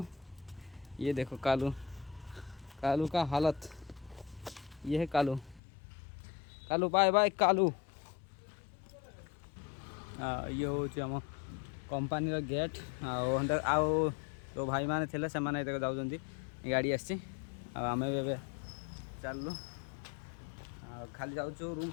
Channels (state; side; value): drops out; right; at 5.6 s